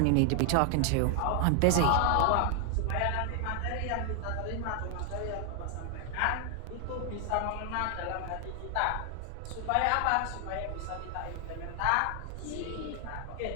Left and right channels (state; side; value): different; both; correlation 0.00